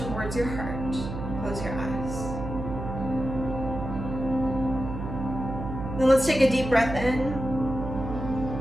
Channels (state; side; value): noise; right; hum, 6 dB below the sound